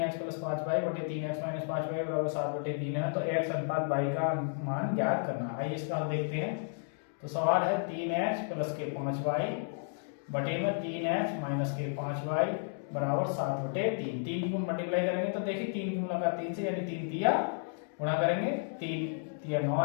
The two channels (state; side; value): silent; right; digital silence